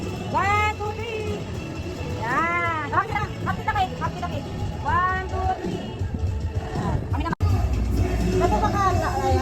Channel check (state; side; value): identical; both; correlation 1.00